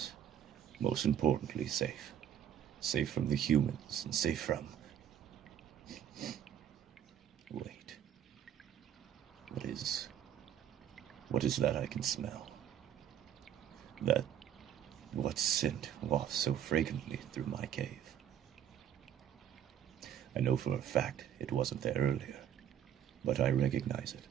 most importantly safe. Safe from the humans, and safe from... Wait. What is that I can smell? What scent wafts so fragrantly through my cave? I know for a fact it wasn't there earlier, but I recognize it.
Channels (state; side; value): quieter; left; 10.0 dB